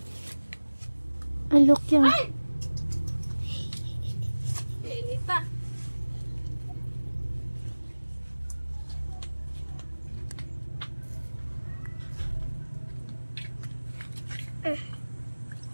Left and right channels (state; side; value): inverted; both; correlation -1.00